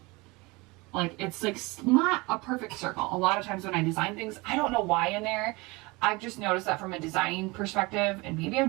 Like it's like not a perfect circle. A lot of times when I design things, I don't know why in there. I've just noticed that from a designing perspective, and maybe I'm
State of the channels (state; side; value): quieter; left; 24.5 dB